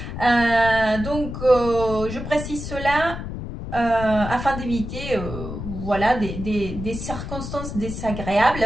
Donc, je précise cela afin d'éviter voilà, des circonstances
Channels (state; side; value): noise; left; rumble, 7 dB below the sound